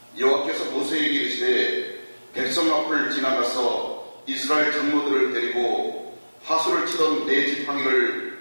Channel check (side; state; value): both; inverted; correlation -1.00